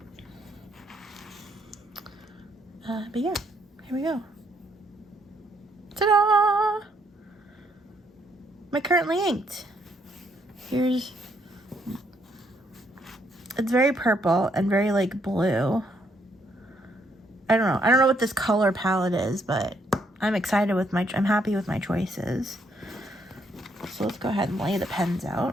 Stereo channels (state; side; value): normal; both; correlation 0.72